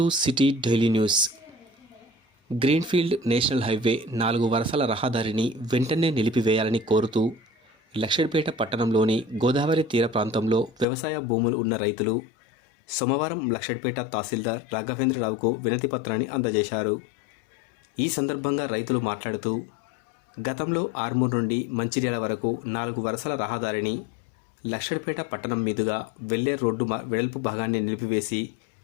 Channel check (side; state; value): right; drops out; at 10.9 s